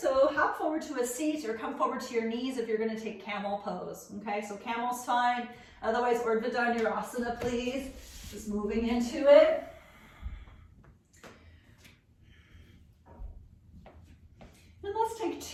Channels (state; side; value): identical; both; correlation 1.00